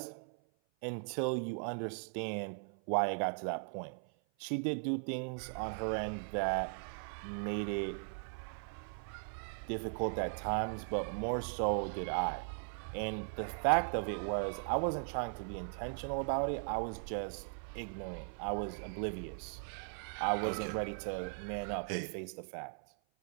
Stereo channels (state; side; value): silent; left; 52 dB below the other